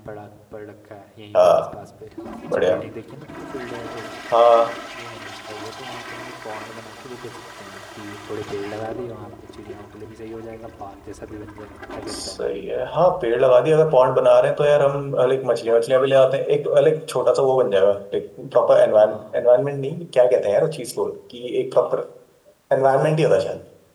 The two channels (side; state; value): both; identical; correlation 1.00